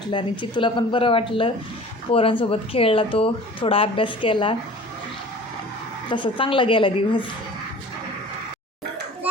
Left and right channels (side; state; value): both; normal; correlation 0.43